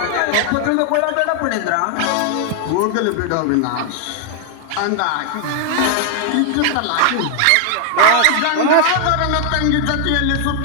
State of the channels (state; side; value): different; both; correlation 0.00